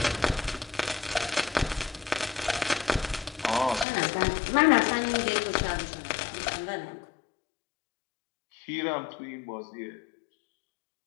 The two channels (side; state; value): right; drops out; at 3.9 s